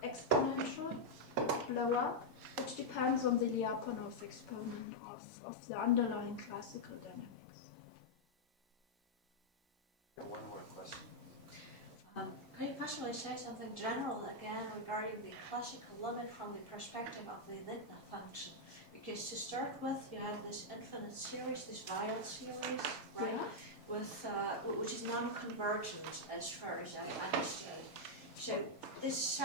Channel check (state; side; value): normal; both; correlation -0.04